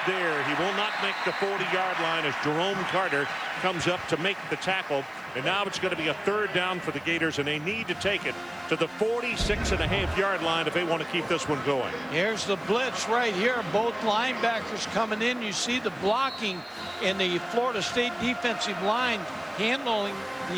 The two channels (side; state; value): left; noise; hiss, 30 dB below the sound